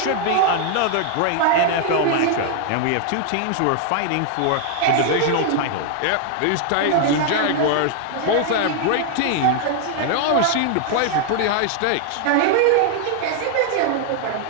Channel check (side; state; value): both; different; correlation 0.00